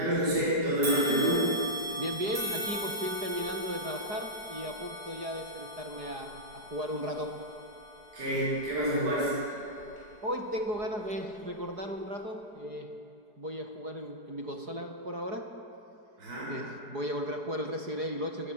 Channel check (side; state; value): left; late; 4.8 ms